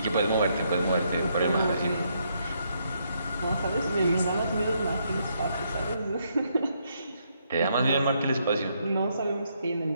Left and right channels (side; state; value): both; inverted; correlation -0.75